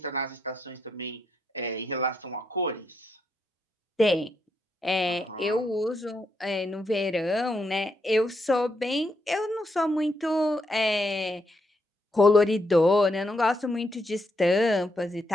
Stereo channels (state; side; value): normal; both; correlation 0.79